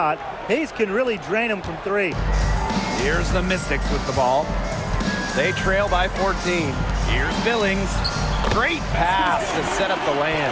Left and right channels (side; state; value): both; identical; correlation 1.00